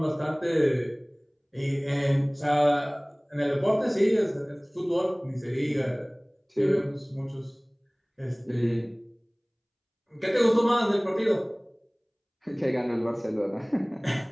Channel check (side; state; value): both; identical; correlation 1.00